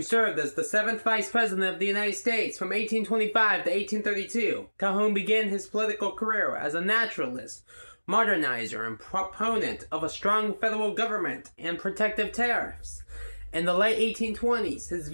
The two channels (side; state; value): both; inverted; correlation -1.00